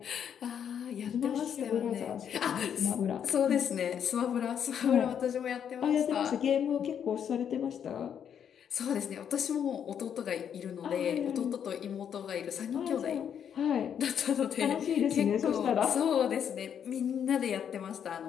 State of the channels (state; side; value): quieter; right; 8.4 dB